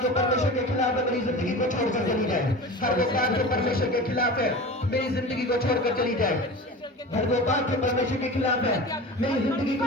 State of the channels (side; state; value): both; normal; correlation 0.33